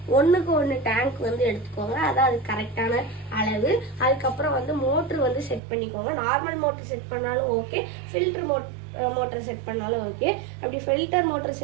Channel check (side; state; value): left; drops out; at 5.6 s